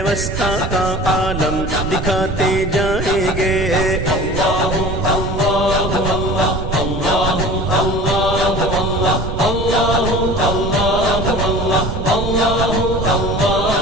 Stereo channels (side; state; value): right; noise; rumble, 4 dB below the sound